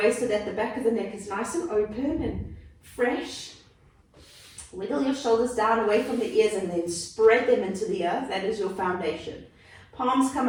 so that the back of the neck is nice and open and fresh. Wiggle your shoulders down away from the ears and then spread them into the earth. That is your foundation. Palms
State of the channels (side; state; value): both; identical; correlation 1.00